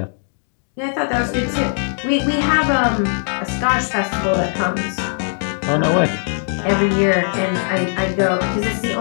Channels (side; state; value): right; silent; digital silence